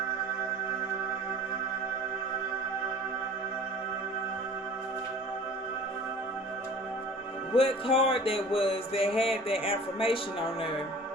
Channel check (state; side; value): normal; both; correlation 0.45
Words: what card that was that had that information on there.